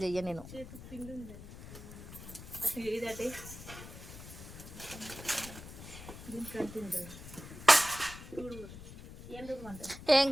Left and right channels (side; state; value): left; noise; rumble, 13 dB below the sound